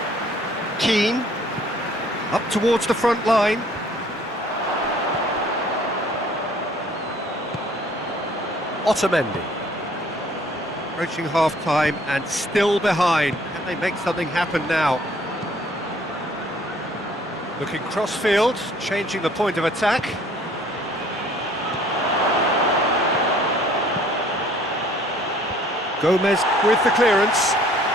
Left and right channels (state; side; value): normal; both; correlation 0.57